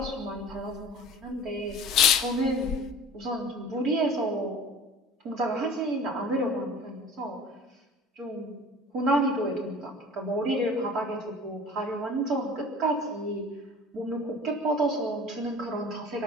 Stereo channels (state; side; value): normal; both; correlation 0.42